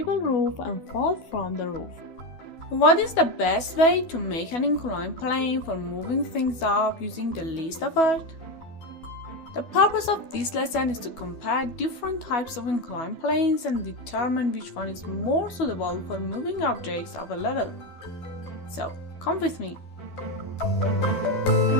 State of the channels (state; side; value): late; right; 12 ms